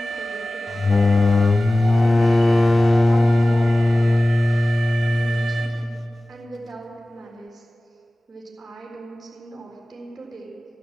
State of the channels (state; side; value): normal; both; correlation 0.97